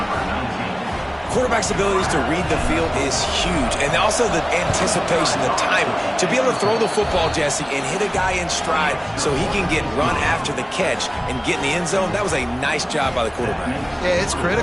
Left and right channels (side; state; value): both; identical; correlation 1.00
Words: Quarterback's abilities to read the field is huge, and also the anticipation, the timing. To be able to throw the football, Jesse, and hit a guy in stride so he can get run after the catch and get in the end zone, that was a nice job by the quarterback. Yeah, it's